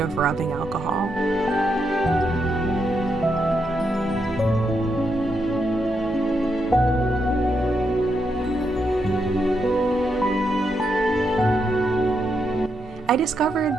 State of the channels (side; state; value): both; normal; correlation 0.81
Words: rubbing alcohol. I